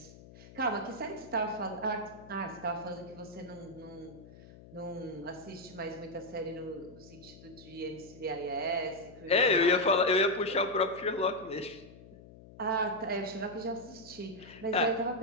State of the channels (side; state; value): left; noise; hum, 19 dB below the sound